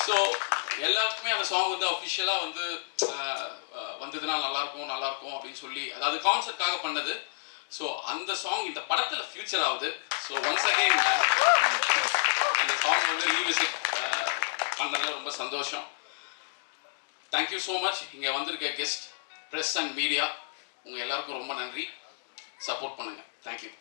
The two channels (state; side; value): silent; right; digital silence